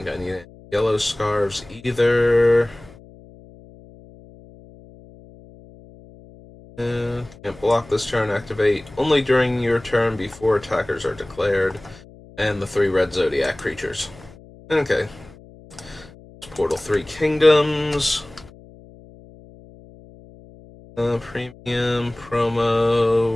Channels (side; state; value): left; noise; hum, 22 dB below the sound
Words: I need any yellow scarves either. Can't block this turn. Activate only during your turn before attackers are declared. And the 3 red Zodiac creatures. Okay. Portal 3 Kingdoms. Premium,